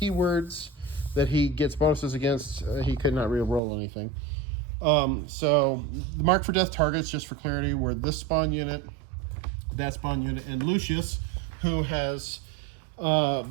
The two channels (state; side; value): drops out; left; at 3.6 s